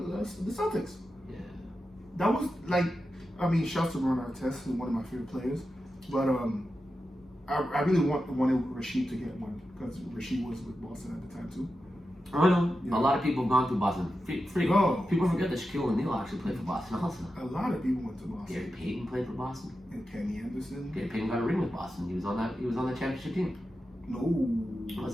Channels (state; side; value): normal; both; correlation 0.91